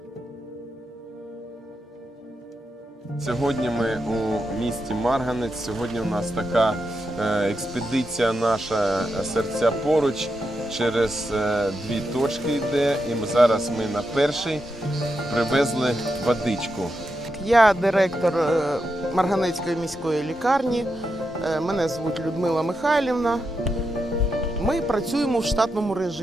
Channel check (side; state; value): both; normal; correlation 0.86